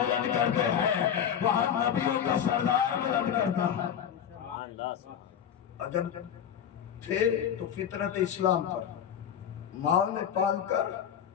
کرتے ہیں، وہاں نبیوں کا سردار بلند کرتا ہے۔ عجب تھے تو فطرت اسلام پر ماں نے پال کر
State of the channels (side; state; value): right; quieter; 8.8 dB